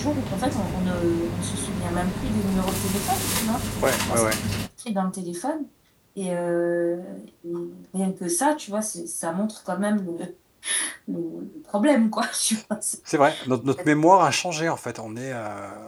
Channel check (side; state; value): both; identical; correlation 1.00